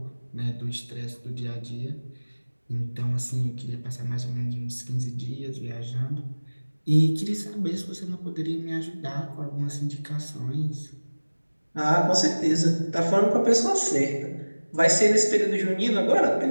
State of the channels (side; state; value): both; inverted; correlation -1.00